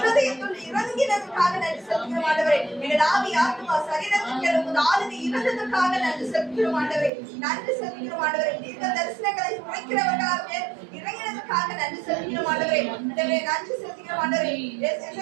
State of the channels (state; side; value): drops out; left; at 7.1 s